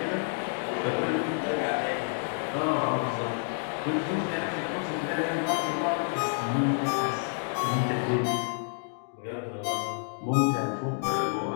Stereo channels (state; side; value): silent; right; 59 dB below the other